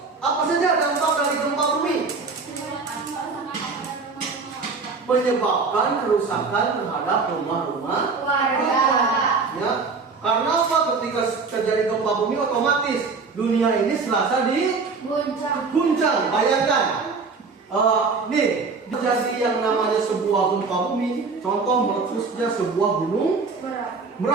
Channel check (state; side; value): quieter; left; 4.5 dB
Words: apa saja dampak dari gempa bumi? Menyebabkan kerusakan terhadap rumah-rumah warga. Ya, karena apa? Ketika terjadi gempa bumi otomatis dunia ini serasa diguncang. Bayangkan, nih terjadi yang namanya sebuah gempa bumi. Contoh meletusnya sebuah gunung